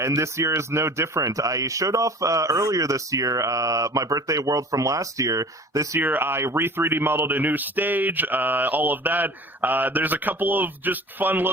this year is no different. I showed off earlier this year my birthday world from last year. This year, I re-3D modeled a new stage, all of that. There's a couple of just fun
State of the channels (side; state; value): both; normal; correlation 0.42